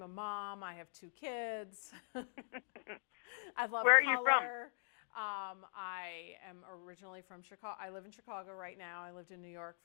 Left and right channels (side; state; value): right; silent; digital silence